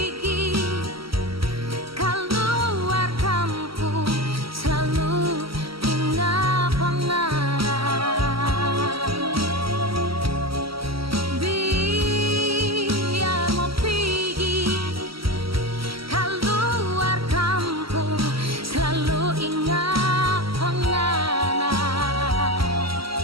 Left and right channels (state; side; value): late; left; 0.75 ms